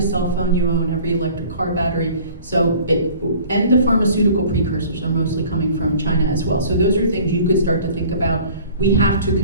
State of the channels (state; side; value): inverted; both; correlation -0.48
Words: cell phone you own, every electric car battery. And the pharmaceutical precursors are mostly coming from China as well. So those are things you could start to think about. We have to